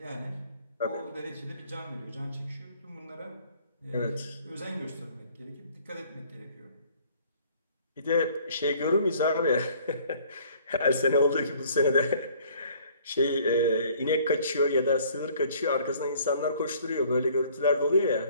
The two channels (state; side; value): inverted; both; correlation -0.56